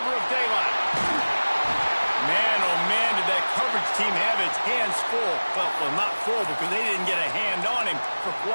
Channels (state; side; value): inverted; both; correlation -1.00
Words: of daylight. Man, oh man, did that coverage team have its hands full. Well, not full because they didn't get a hand on him for